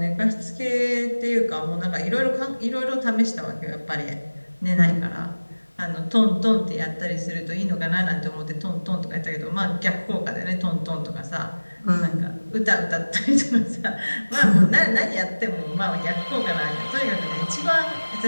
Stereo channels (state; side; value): inverted; both; correlation -1.00